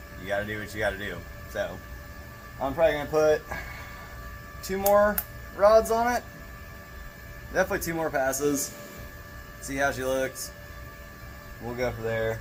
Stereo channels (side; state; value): both; identical; correlation 1.00